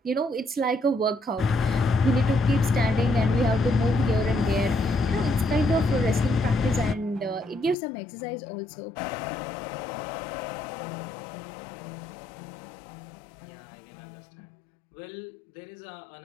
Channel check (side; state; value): right; drops out; at 7.8 s